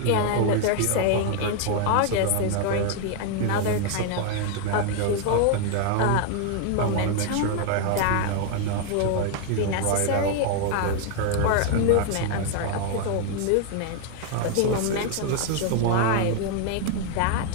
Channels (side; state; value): both; different; correlation 0.00